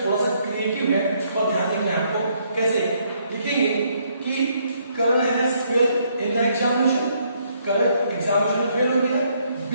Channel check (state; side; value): inverted; both; correlation -0.70